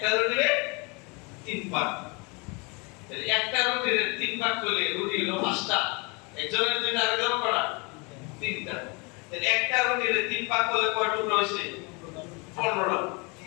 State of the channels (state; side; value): quieter; right; 30.2 dB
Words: রুটিরে তিন ভাগ, তাহলে একটা রুটিরে তিন ভাগ করলে রুটি হলো পাঁচটা, একজনের দুইটা আরেকজনের কটা? তিনটা। তাহলে একটা রুটিরে তিন ভাগ করলে কয় টুকরা হইছে? 15টা।